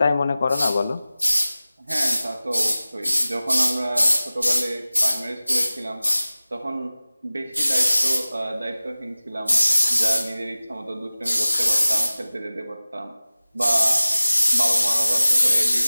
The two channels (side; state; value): both; inverted; correlation -0.97